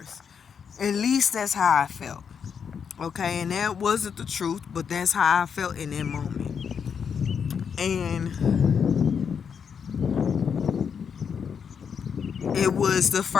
At least that's how I felt. Okay, and that wasn't the truth, but that's how I felt in that moment. And it was the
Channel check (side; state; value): right; quieter; 6.9 dB